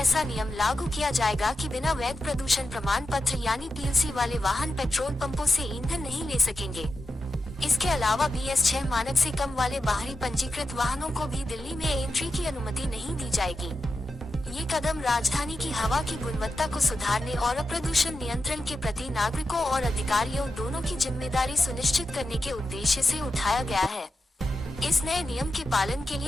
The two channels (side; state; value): both; normal; correlation 0.89